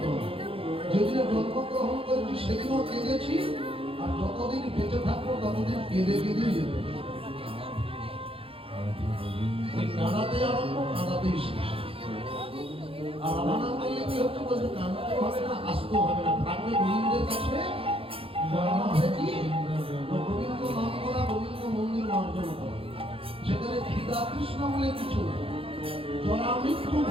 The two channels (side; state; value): left; late; 0.27 ms